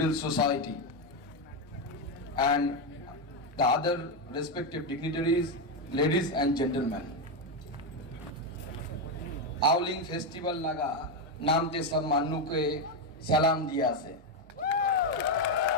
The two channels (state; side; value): normal; both; correlation 0.07